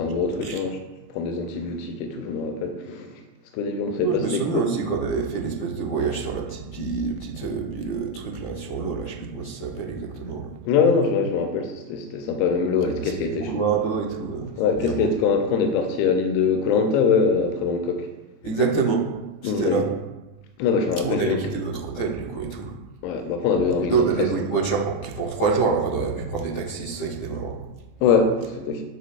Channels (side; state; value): right; late; 18 ms